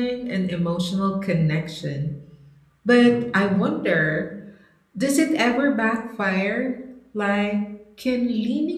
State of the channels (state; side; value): identical; both; correlation 1.00